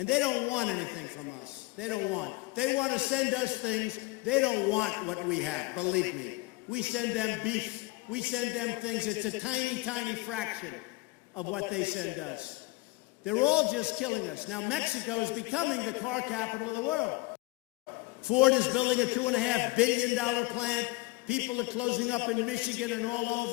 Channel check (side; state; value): right; quieter; 22.3 dB